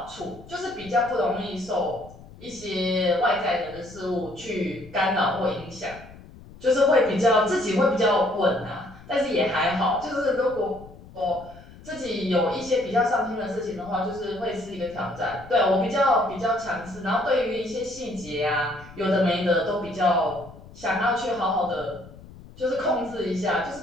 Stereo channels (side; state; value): left; noise; rumble, 19 dB below the sound